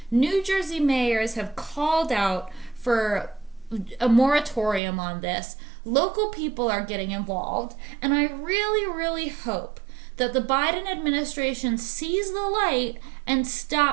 New Jersey mayors have called out for a moratorium on this. Local people are getting involved, and I really, really hope that the Biden administration sees the light and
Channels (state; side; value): drops out; left; at 4.8 s